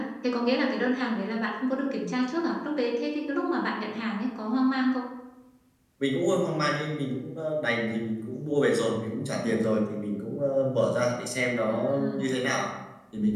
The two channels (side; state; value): both; identical; correlation 1.00